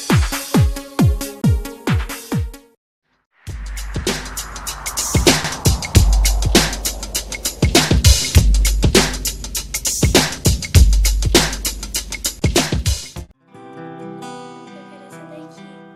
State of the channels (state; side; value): identical; both; correlation 1.00